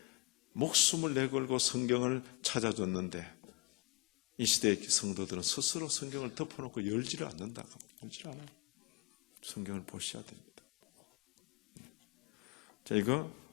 목숨을 내걸고 성경을 찾아줬는데 이 시대의 성도들은 스스로 성경을 덮어놓고 열지를 않는다. 열지를 않아요. 성경을 보셔야 됩니다. 자, 이거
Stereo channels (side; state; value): right; quieter; 25.5 dB